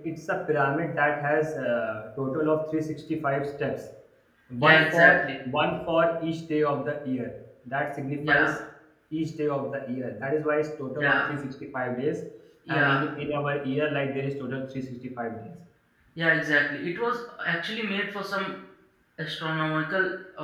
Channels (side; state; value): both; identical; correlation 1.00